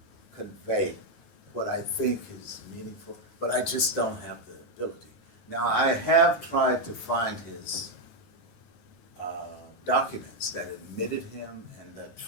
convey what I think is meaningful, but I just don't have the ability. Now, I have tried to find his documents that admitted him and that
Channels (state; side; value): late; right; 9.2 ms